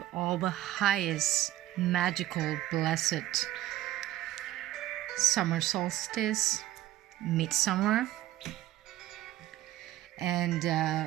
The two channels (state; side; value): quieter; left; 14.9 dB